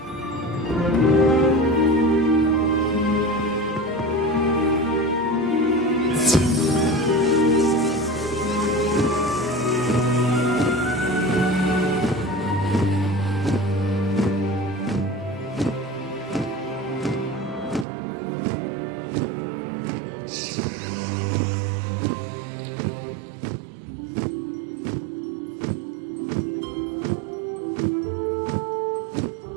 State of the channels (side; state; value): left; drops out; at 17.9 s